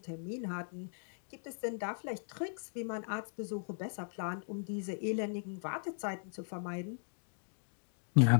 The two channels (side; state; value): right; silent; digital silence